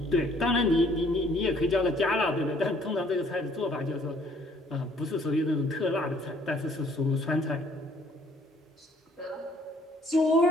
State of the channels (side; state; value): both; normal; correlation 0.61